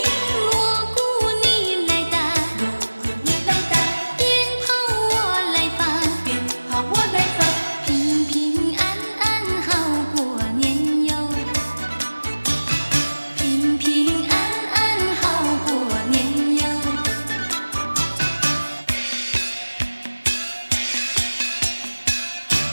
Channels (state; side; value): inverted; both; correlation -1.00